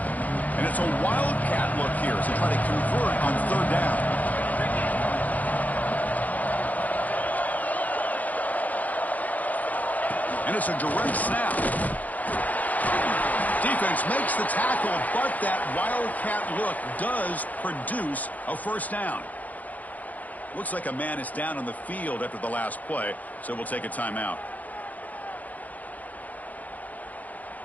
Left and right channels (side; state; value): right; late; 0.078 ms